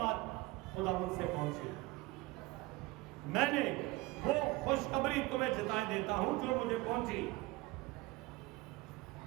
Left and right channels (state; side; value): quieter; left; 21.3 dB